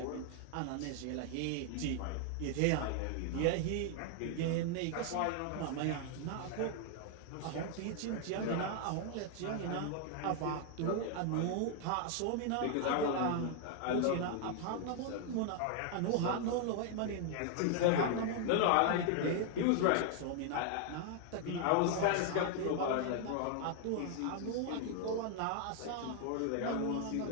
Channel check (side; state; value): both; different; correlation 0.00